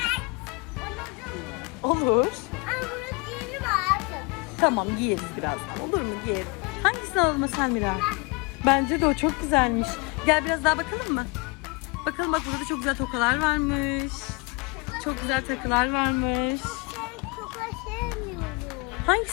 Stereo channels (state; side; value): quieter; right; 28.5 dB